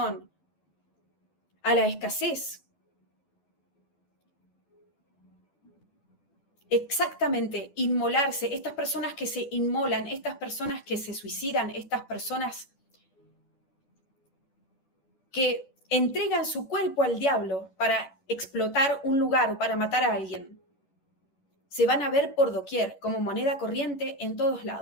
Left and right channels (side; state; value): right; late; 11 ms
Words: a la escasez. Exactamente, inmolarse, estas personas que se inmolan, estas personas que se suicidan, estas personas que entregan su cuerpo al diablo para explotar un lugar o para matar a alguien, se van a ver por doquier como moneda corriente en todos